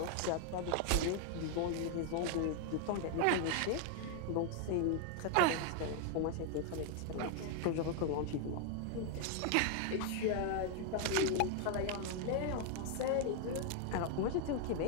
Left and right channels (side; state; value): both; different; correlation 0.00